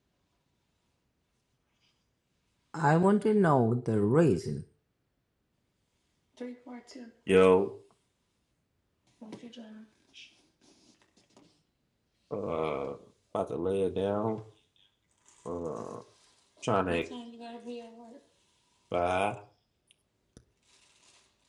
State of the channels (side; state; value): both; identical; correlation 1.00